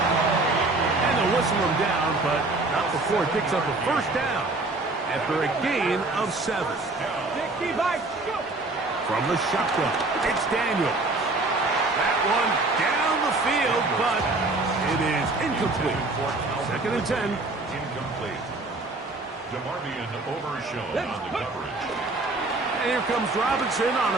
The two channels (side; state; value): left; quieter; 3.1 dB